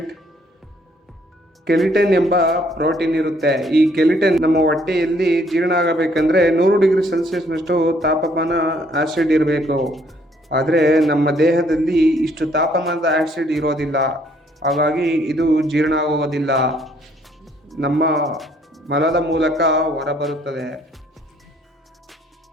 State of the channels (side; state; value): both; normal; correlation 0.65